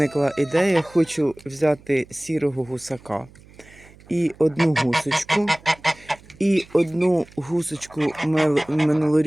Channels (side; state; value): right; noise; hum, 24 dB below the sound